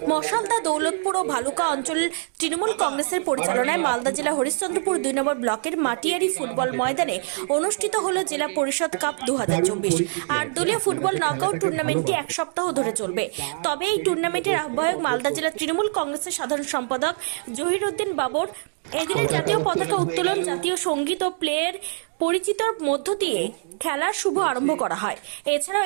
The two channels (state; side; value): silent; left; 62 dB below the other